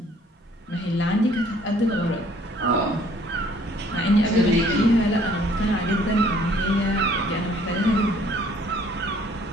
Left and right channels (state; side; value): normal; both; correlation 0.59